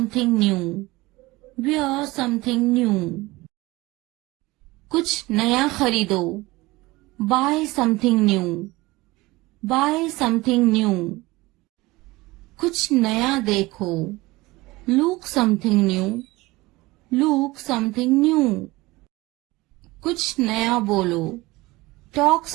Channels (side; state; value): left; quieter; 20.8 dB